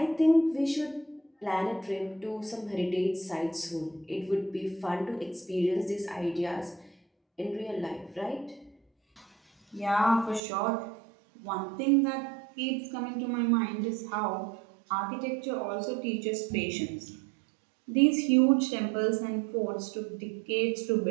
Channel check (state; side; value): drops out; left; at 10.4 s